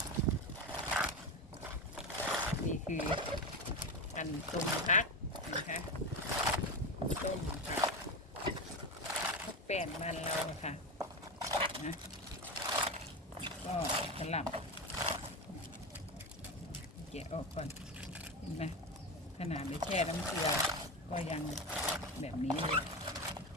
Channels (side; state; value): both; normal; correlation 0.18